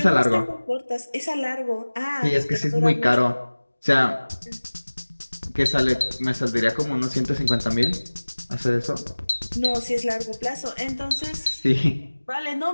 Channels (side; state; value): both; inverted; correlation -1.00